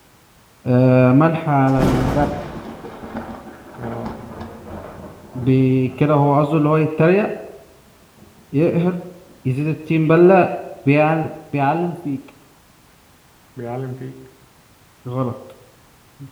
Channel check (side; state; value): both; identical; correlation 1.00